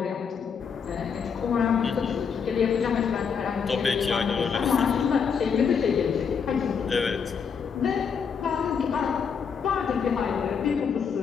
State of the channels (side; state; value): right; quieter; 6.5 dB